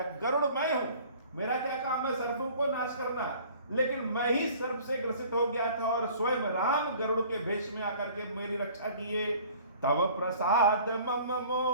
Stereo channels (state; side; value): inverted; both; correlation -0.50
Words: गरुड़ मैं हूं, मेरा क्या काम है सर्पों को नाश करना, लेकिन मैं ही सर्प से ग्रसित हो गया था और स्वयं राम गरुड़ के भेष में आकर के मेरी रक्षा किए। तब प्रसाद मम